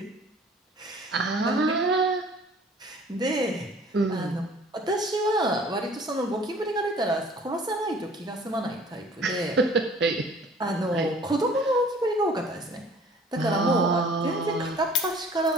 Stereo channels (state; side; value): normal; both; correlation 0.51